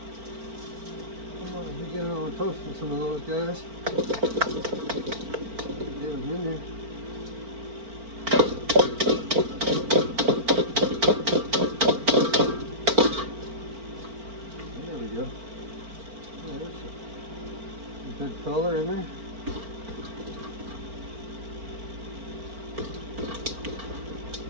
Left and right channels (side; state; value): left; late; 4.4 ms